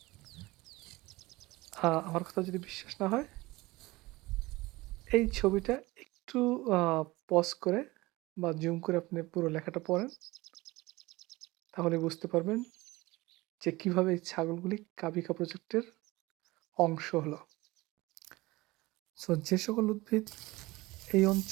আমার কথা যদি বিশ্বাস না হয়, এই ছবিটা একটু আ পজ করে বা জুম করে আপনি পুরো লেখাটা পড়েন, তাহলে বুঝতে পারবেন যে কিভাবে এই ছাগলগুলি কাবিখা প্রজেক্টের অংশ হলো। যে সকল উদ্ভিদ এই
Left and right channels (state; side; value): quieter; left; 20.7 dB